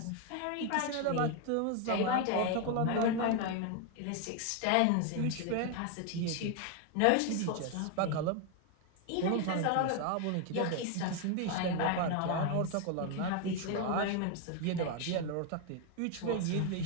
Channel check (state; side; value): different; both; correlation 0.01